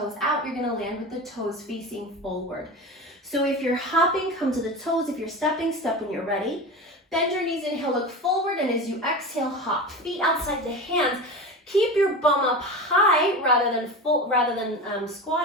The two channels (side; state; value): both; normal; correlation 0.28